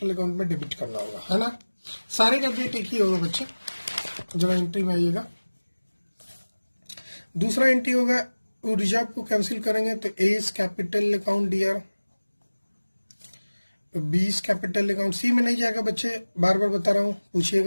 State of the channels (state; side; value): inverted; both; correlation -1.00